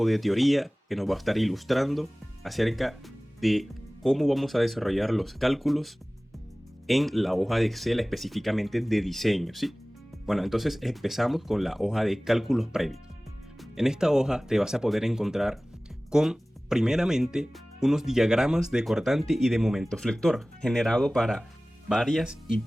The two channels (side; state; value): both; normal; correlation 0.98